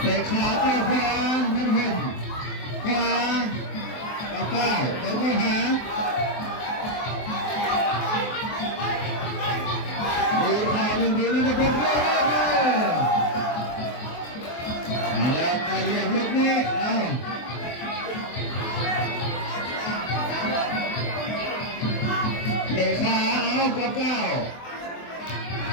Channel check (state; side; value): late; right; 23 ms